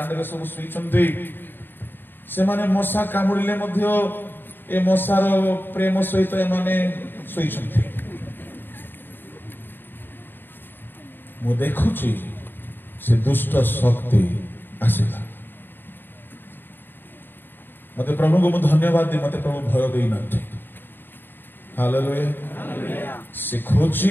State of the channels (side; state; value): right; late; 0.095 ms